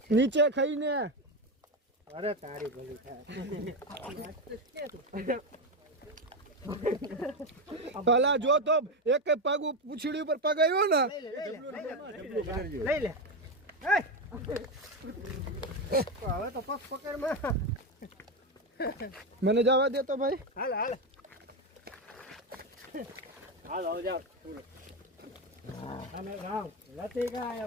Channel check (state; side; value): normal; both; correlation 0.12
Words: નીચે ખાઈને અરે તારી ભલી થાય ભલા જો તો એક પગ પૂછડી ઉપર પગ આવ્યો ને લઈ લે હવે તો પગ પકડમાં મને જવા દે તો ભાઈ હાલ હાલ હાલ આવ જાવ અને ગાવ લતી ગાય